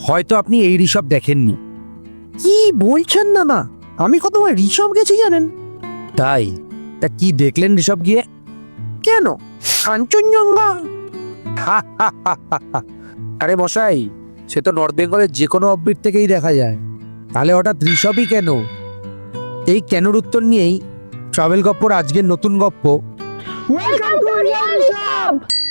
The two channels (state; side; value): inverted; both; correlation -1.00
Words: হয়তো আপনি এই ঋষভ দেখেননি। কি বলছেন না না, আমি কতবার ঋষভ গেছি জানেন? তাই? তা কি দেখলেন ঋষভ গিয়ে? কেন, কাঞ্চনজঙ্ঘা। আরে মশাই, সে তো নর্থ বেঙ্গলের যে কোনো অফবিট থেকেই দেখা যায়। তাহলে হঠাৎ ঋষভই কেন? এই কেনর উত্তর নিয়েই ট্রাভেল গপ্পর আজকের নতুন গপ্প। Welcome to real Rishabh.